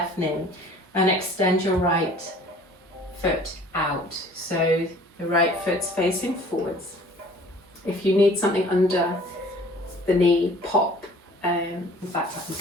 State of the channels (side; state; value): both; normal; correlation 0.51